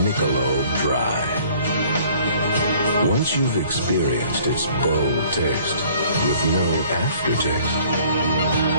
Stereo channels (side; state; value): both; inverted; correlation -0.55